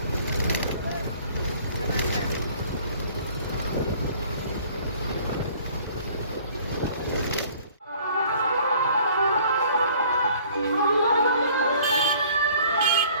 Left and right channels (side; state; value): both; inverted; correlation -0.54